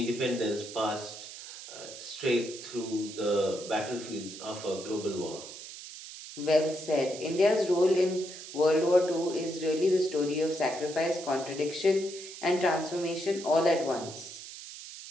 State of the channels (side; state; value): right; noise; hiss, 12 dB below the sound